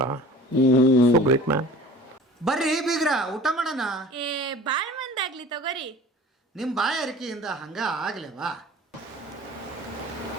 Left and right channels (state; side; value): normal; both; correlation 0.43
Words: So great man. ಬರ್ರಿ ಬೀಗ್ರ ಊಟ ಮಾಡೋಣ. ಬಾಳ್ ಮಂದಾಗ್ಲಿ ತಗೋರಿ. ನಿಮ್ಮ ಬಾಯಾರಿಕೆಯಿಂದ ಹಂಗ ಆಗ್ಲೇವಾ?